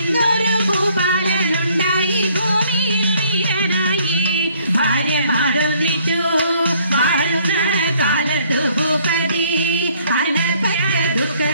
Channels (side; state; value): both; inverted; correlation -0.63